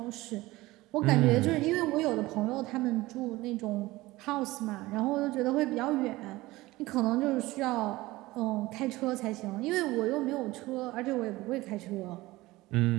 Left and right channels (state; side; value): quieter; left; 19.2 dB